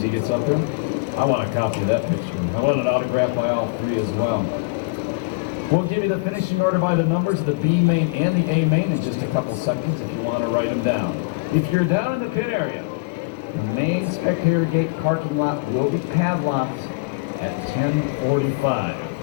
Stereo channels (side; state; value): right; quieter; 28.9 dB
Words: gets up there. I want a copy of that picture. I want it autographed by all 3 as well. We'll give you the finishing order by the numbers of the B main and the A main in just a couple seconds if you want to write them down. If you're down in the pit area, the main spectator gate parking lot will be padlocked at 10:45.